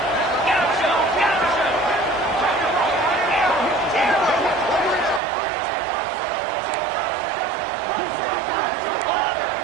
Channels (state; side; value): drops out; left; at 5.2 s